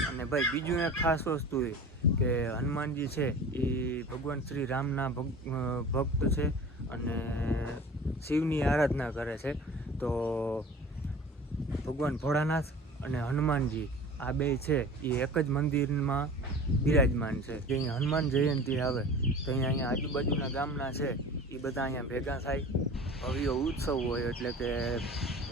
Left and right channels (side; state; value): both; normal; correlation 0.40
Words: અને ભાઈ બીજું એક ખાસ વસ્તુ એ કે હનુમાનજી છે એ ભગવાન શ્રી રામના ભક્ત છે અને શિવની આરાધના કરે છે. તો ભગવાન ભોળાનાથ અને હનુમાનજી આ બે છે એ એક જ મંદિરમાં બિરાજમાન છે. જે અહીંયા હનુમાન જયંતિ આવે તો અહીંયા આજુબાજુના ગામના છે એ બધા અહીંયા ભેગા થાય, ભવ્ય ઉત્સવ હોય, એટલે કે